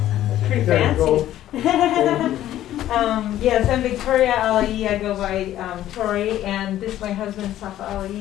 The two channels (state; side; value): quieter; right; 12.9 dB